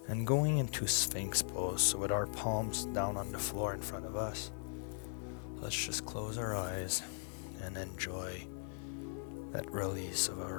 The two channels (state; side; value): silent; right; 52 dB below the other